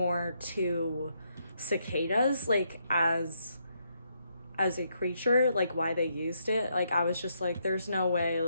to cicadas, like, as a creature, like, why they used it. Like, I was just like, there's no way,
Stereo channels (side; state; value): both; inverted; correlation -0.77